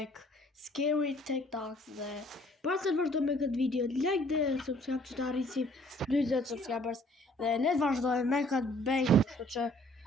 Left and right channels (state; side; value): normal; both; correlation 0.59